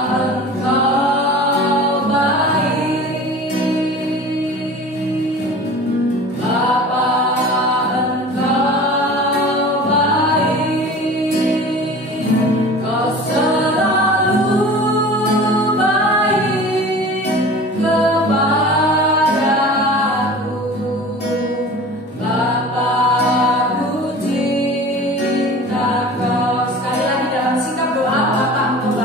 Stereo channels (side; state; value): both; normal; correlation 0.39